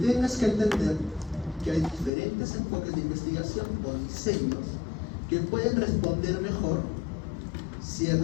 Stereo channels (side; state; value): right; drops out; at 2.1 s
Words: que entender que hay diferentes enfoques de investigación o diseños que pueden responder mejor